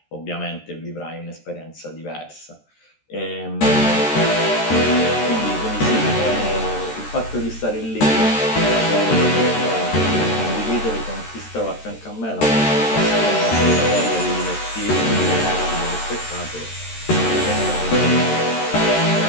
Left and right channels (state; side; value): late; right; 13 ms